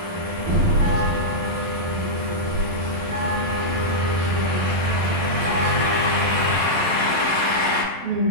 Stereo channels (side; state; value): left; late; 11 ms